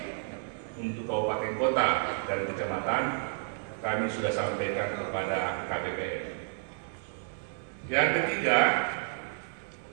untuk kabupaten kota dan kecamatan kami sudah sampaikan kepada KPPN. Yang ketiga,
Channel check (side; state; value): left; silent; 57 dB below the other